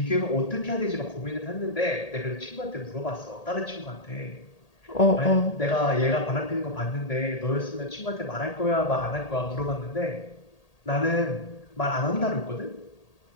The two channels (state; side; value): late; right; 1.8 ms